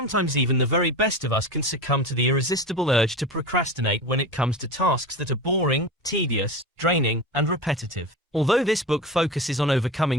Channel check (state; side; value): normal; both; correlation 0.28